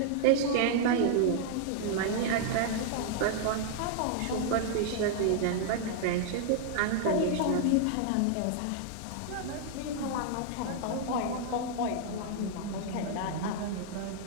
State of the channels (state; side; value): different; both; correlation -0.01